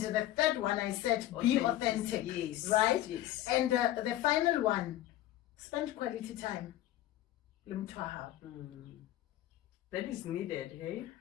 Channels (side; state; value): right; quieter; 14.0 dB